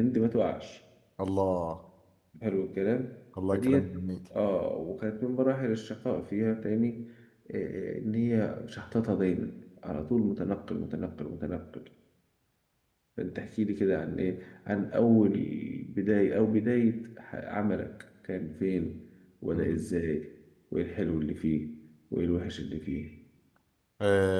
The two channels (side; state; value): both; identical; correlation 1.00